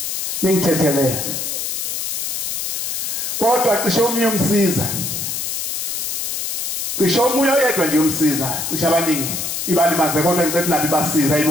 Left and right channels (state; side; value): noise; left; hiss, 2 dB below the sound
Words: ningithethelele kodwa cishe omunye umsiza cishe omunye oyedwa nje umsiza cishe abaningi ibalimaze kodwa ngicela nabi basiza